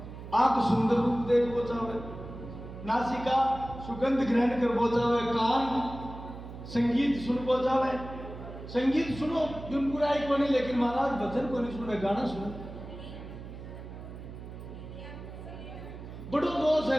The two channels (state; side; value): noise; right; hum, 12 dB below the sound